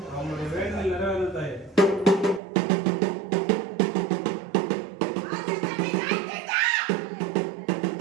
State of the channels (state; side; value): drops out; left; at 2.4 s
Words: அவங்களுடைய வேண்டுதல் நிறைவேறும் தாயே.